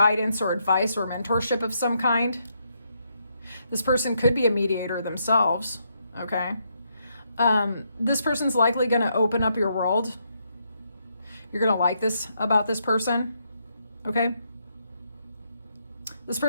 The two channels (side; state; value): both; inverted; correlation -0.77